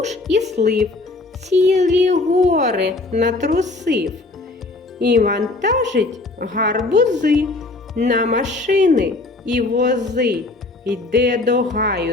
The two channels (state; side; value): quieter; right; 3.2 dB